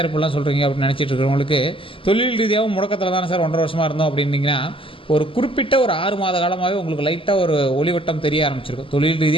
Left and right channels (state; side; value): late; right; 0.26 ms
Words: இப்படிலாம் சொல்கிறீங்க அப்படின்னு நினச்சிட்டு இருக்கிறவங்களுக்கு, தொழில் ரீதியாகவும் முடக்கத்தில் தானே சார் 1.5 வருஷமாக இருந்தோம் அப்படின்னீங்கன்னா, ஒரு குறிப்பிட்ட ஒரு 6 மாத காலமாகவே உங்களுக்கு லைட்டாக ஒரு ஒளிவட்டம் தெரிய ஆரம்பிச்சிருக்கும். தொழில்